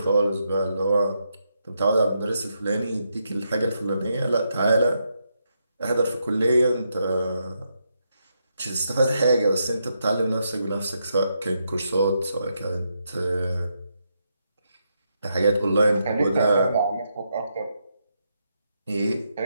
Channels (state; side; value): inverted; both; correlation -0.81